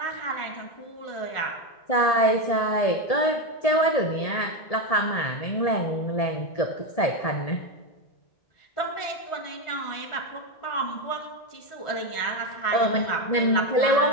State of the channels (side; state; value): right; late; 1.7 ms